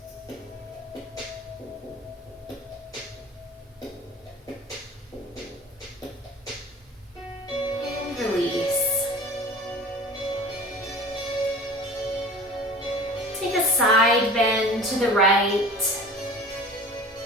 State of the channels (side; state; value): both; normal; correlation 0.41